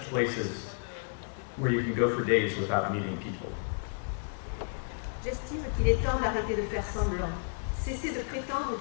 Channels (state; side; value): silent; right; digital silence